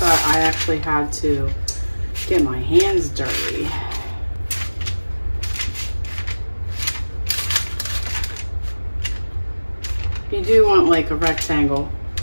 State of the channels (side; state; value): both; inverted; correlation -1.00